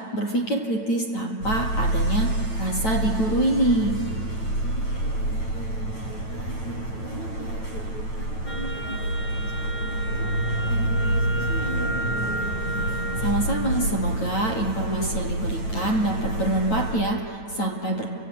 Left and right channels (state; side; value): late; right; 9.1 ms